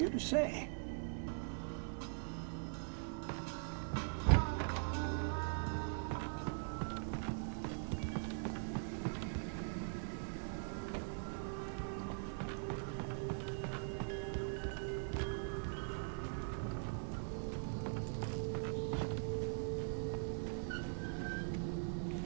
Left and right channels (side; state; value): left; silent; digital silence